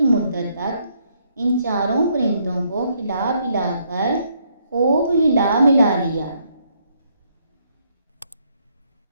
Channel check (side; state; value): both; inverted; correlation -0.72